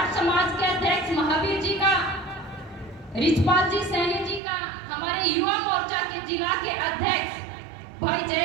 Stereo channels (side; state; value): left; drops out; at 4.4 s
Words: समाज के अध्यक्ष महावीर जी का, रिचपाल जी सैनी जी का, हमारे युवा मोर्चा के जिला के अध्यक्ष भाई